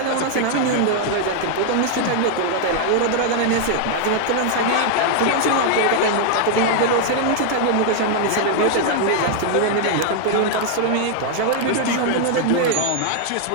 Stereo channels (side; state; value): both; different; correlation 0.00